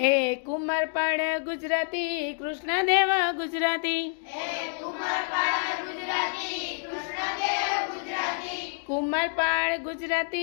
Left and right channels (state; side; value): silent; right; digital silence